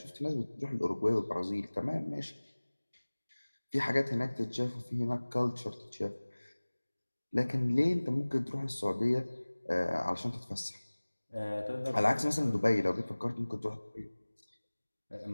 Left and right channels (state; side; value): inverted; both; correlation -1.00